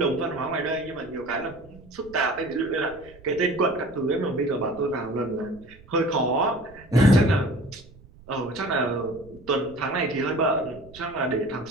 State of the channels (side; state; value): right; noise; rumble, 22 dB below the sound